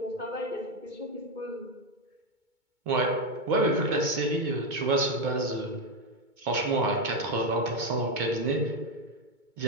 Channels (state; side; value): late; left; 2.2 ms